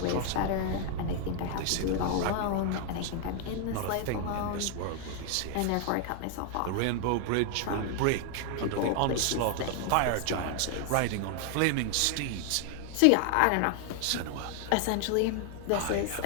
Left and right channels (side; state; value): both; different; correlation 0.00